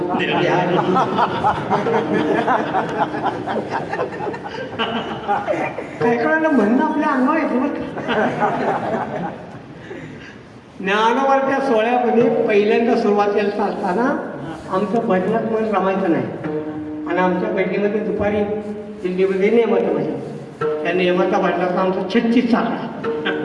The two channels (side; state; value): both; identical; correlation 1.00